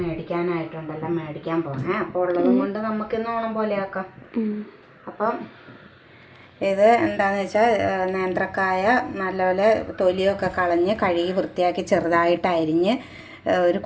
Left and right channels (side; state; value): both; identical; correlation 1.00